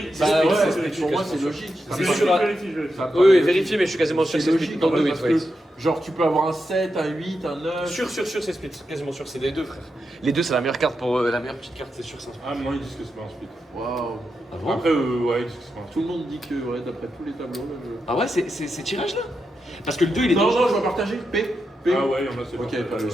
c'est ouais, split, pour moi, c'est c'est logique. C'est Vérifie, sûr. vérifie. Oui, oui, vérifiez, mais je suis quasiment sûr que c'est split. logique, Dans en le fait, 8, parce ouais. que, genre, tu peux avoir un 7, un 8, un 9. Sûr, c'est split. Quasiment sûr, c'est les deux, frère. Les deux, c'est la meilleure carte pour. La meilleure petite carte, c'est sûr, c'est un split. Ah, non, ils disent que c'est pas un split. Waouh. Ah bon? Après, ouais, ils disent que c'est pas un split. Tout le monde dit que, ouais, d'après tous les tableaux, là, je. Ah ouais, c'est tirage là? Parce que le 2, il est Non, dangereux. non, je vais partager. P. Ah ouais, il y en a, c'est Ok, pas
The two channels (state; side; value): normal; both; correlation 0.87